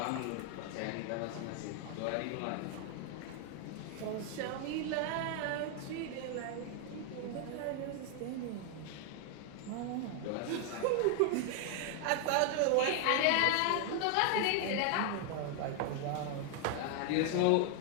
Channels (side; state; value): both; different; correlation 0.00